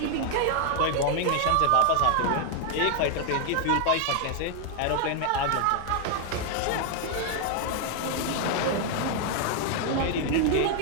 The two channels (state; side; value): different; both; correlation 0.00